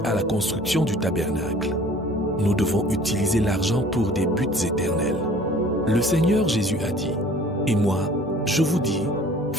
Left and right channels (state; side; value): normal; both; correlation 0.50